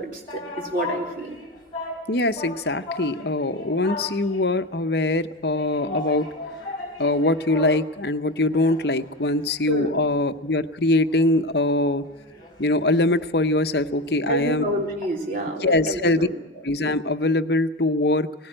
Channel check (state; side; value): normal; both; correlation 0.21